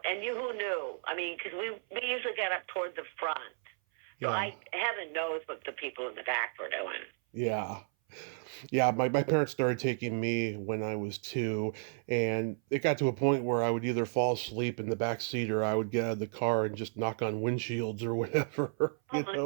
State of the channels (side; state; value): left; silent; 56 dB below the other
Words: And who knew? I mean, because we usually got up toward the front. So heaven knows what the people in the back were doing. Yeah. Yeah, my parents started taking me when I was 2, and it got to a point where I would either fall asleep in the back seat or I would get out of the car and just knock on windshields or whatever. Oh